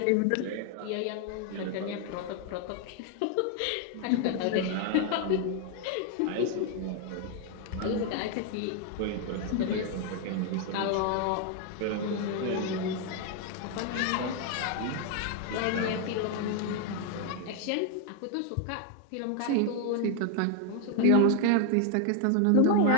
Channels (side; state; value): both; different; correlation 0.01